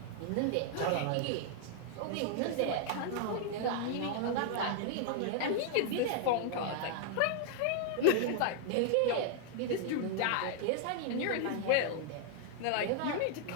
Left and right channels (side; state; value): both; different; correlation 0.00